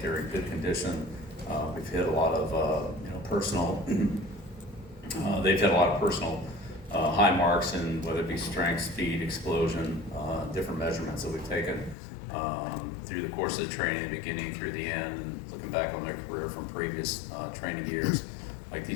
they're in good condition. We've hit a lot of personal. They've hit a lot of personal high marks in whether it be strength, speed, explosion, different measurements that we've taken through the course of the training, beginning through the end, and looking back on their career from previous training years. Like,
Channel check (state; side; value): drops out; right; at 12.0 s